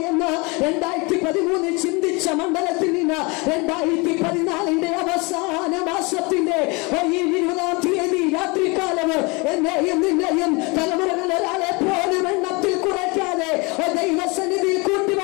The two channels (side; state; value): right; quieter; 28.0 dB